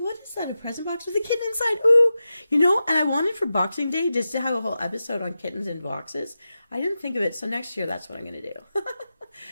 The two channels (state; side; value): inverted; both; correlation -0.92